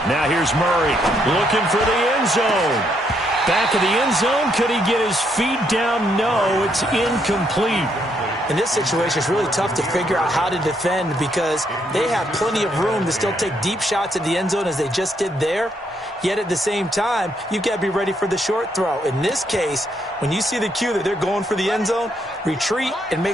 Now here's Murray looking for the end zone. Back of the end zone. Could he get his feet down? No, it's incomplete. In this situation, it's really tough to figure out how to defend because they have plenty of room to still take deep shots at the end zone as they just did there. Yet at the same time, you've got to be ready for the short throw. In this case, when you see the cue that they're going for the end zone, retreat and make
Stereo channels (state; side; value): normal; both; correlation 0.74